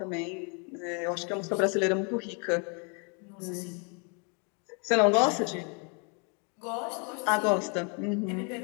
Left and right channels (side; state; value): right; quieter; 36.1 dB